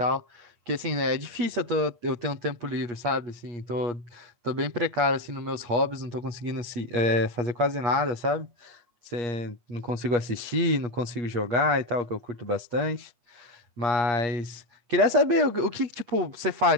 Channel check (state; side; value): late; left; 8.4 ms